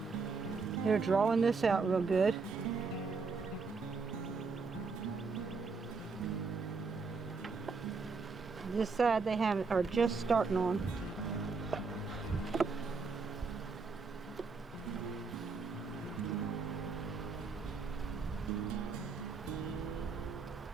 They're drawing this out real good. This side they are just starting on.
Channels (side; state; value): left; quieter; 4.6 dB